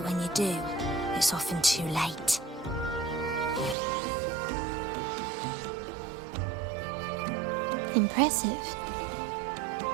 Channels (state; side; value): drops out; left; at 3.8 s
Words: when you do, it's often too late. Impressive.